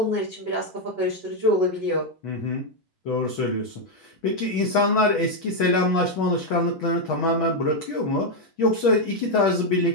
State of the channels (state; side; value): normal; both; correlation 0.02